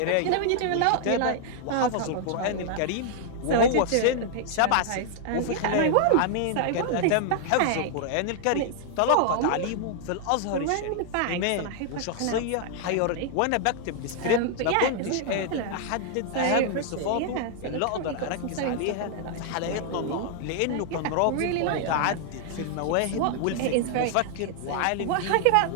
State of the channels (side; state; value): both; different; correlation 0.00